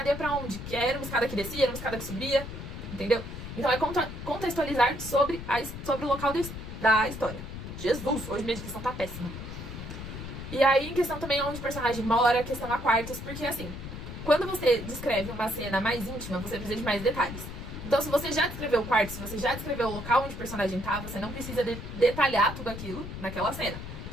ia pra onde? Que era uma escada que descia, era uma escada que subia, entendeu? Então é contextualizar sobre o local da história. Jesus, hoje minha descrição tá péssima. E aí, em questão também onde o personagem mora, questão a quartos, porque assim, quando você descreve uma cena mais íntima, você precisa de mais detalhes. Então, se você já descreveu o quarto, se você já descreveu o local onde o personagem tá, você não precisa detalhar tudo aquilo naquela cena.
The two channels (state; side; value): noise; left; rumble, 9 dB below the sound